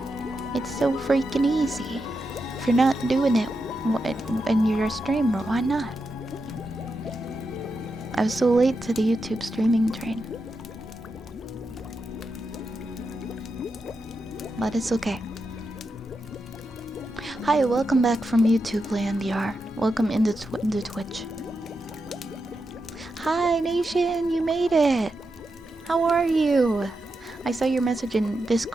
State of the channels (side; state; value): both; normal; correlation 0.87